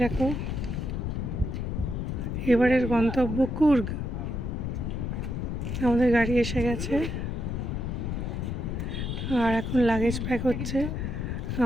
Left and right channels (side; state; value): left; noise; rumble, 2 dB below the sound